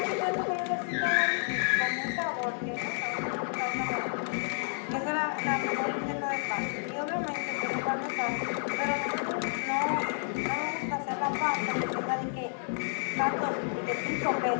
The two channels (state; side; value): silent; right; digital silence